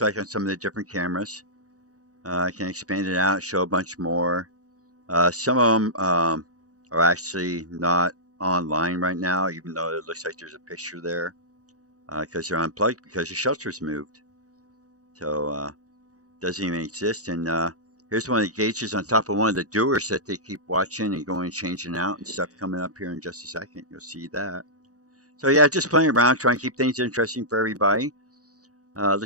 like on some of the different cameras. I can expand it out, show a bunch more. Some of them are actually not online right now, even though it looks like there's a picture there, because they're unplugged because the shelter's moved. So doesn't even exist. And here's one of the gauges on top of one of the doers that they keep watching and going changing out and stuff coming up here in just a second. You'll see that. So yeah, just playing around, trying to keep things interesting for everybody.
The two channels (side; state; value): left; late; 0.66 ms